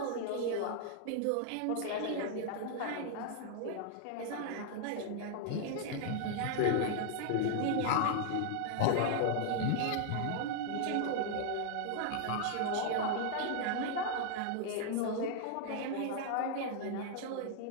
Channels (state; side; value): different; both; correlation 0.00